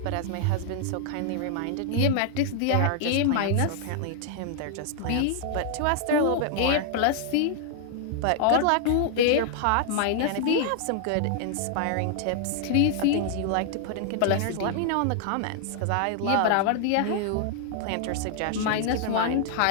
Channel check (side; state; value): both; different; correlation 0.00